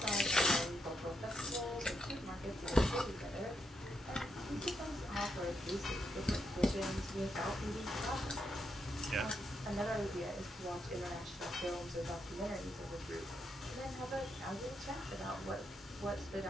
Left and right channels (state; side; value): normal; both; correlation 0.80